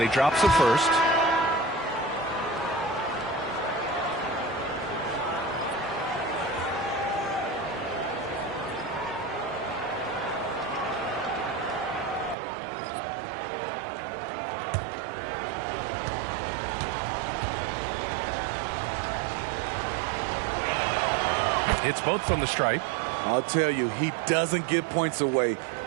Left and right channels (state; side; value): drops out; left; at 12.4 s